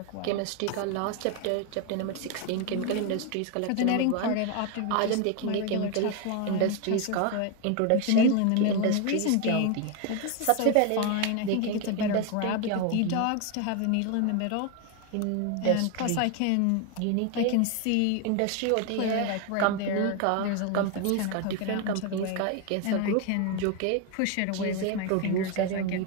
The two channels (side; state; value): both; different; correlation 0.01